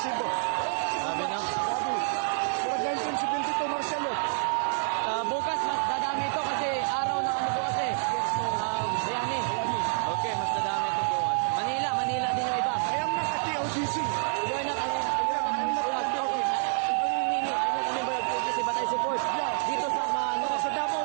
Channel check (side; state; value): left; silent; 55 dB below the other